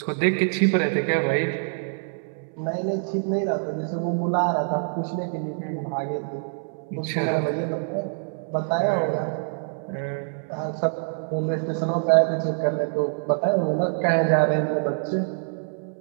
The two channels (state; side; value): silent; left; 61 dB below the other